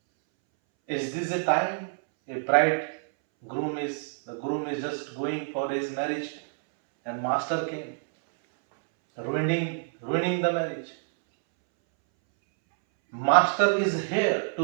Is this a time a the groom is just going for his marriage and master came, ruining the marriage. Master is here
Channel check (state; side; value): silent; left; 60 dB below the other